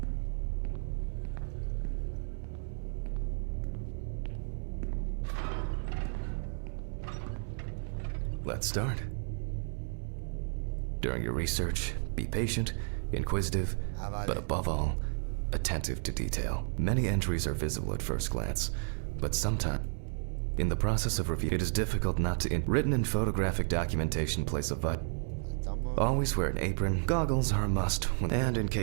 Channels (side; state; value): left; silent; 56 dB below the other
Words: Let's start. During your research, be patient, inquisitive, Vale. but above all, attentive to detail. Many entries are visible at first glance, but sometimes, in the process of review, it is difficult not to. Written and photographic documentation plays a vital. Estamos. Always wear an apron. Goggles are a must, and in